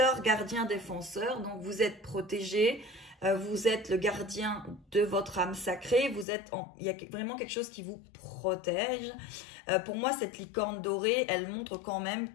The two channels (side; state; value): right; drops out; at 6.2 s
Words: gardien, défenseur. Donc, vous êtes protégé, vous êtes le gardien de votre âme sacrée. Il y a vraiment quelque chose qui vous protège. Pour moi, cette licorne dorée, elle montre quand même